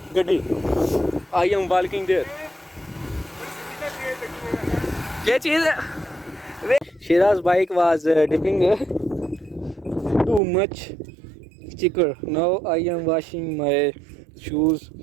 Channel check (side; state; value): left; drops out; at 10.4 s